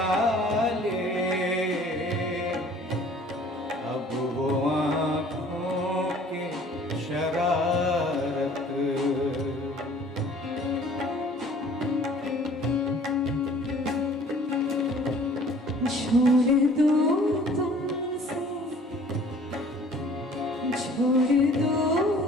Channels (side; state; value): both; normal; correlation 0.52